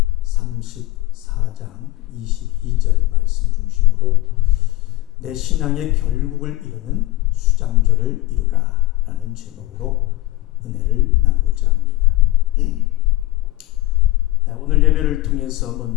34장 22절 말씀 중심으로 내 신앙의 결국을 이루는 수장절을 이루라 라는 제목으로 은혜를 나누고자 합니다. 오늘 예배를 통해서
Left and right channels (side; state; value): right; quieter; 18.3 dB